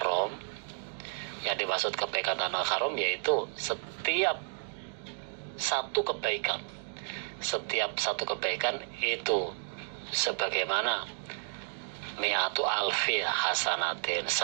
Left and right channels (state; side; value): silent; left; digital silence